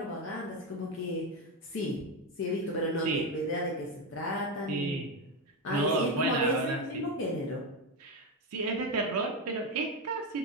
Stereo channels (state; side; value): normal; both; correlation 0.11